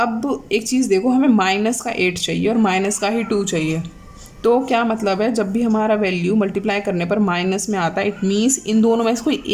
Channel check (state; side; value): identical; both; correlation 1.00